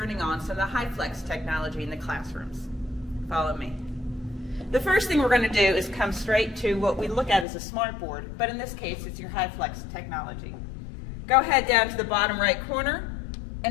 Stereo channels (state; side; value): drops out; right; at 7.5 s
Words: on some of the HyFlex technology in the classrooms. Follow me. The first thing we're going to do is come straight to what we look at as a smart board, but in this case it's your HyFlex technology. Go ahead down to the bottom right corner